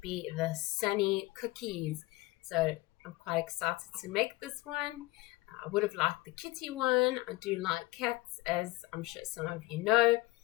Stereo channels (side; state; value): right; quieter; 20.2 dB